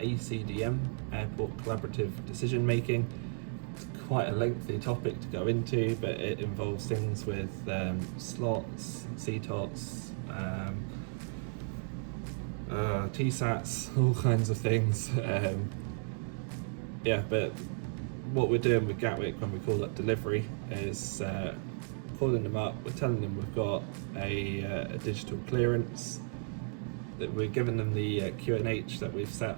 Airport Collaborative Decision Making. It's quite a lengthy topic to go into, but it involves things with slots, CTOTs, TSATs, all kinds of things. Yeah, but what we're doing with Gatwick when we call up delivery is calling them up, we're telling them we've got a digital clearance, that we're giving them the QNH that we've set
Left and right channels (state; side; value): silent; left; 55 dB below the other